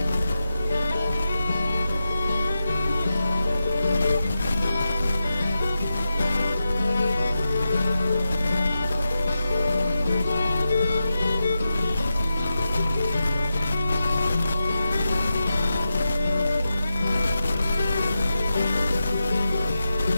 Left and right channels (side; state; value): both; inverted; correlation -0.88